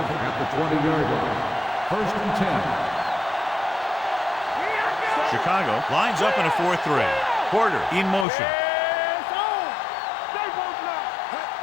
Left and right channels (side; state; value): right; drops out; at 8.2 s